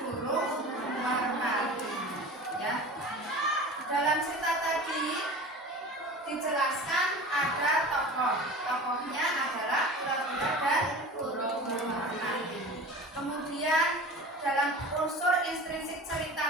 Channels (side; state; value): both; normal; correlation 0.36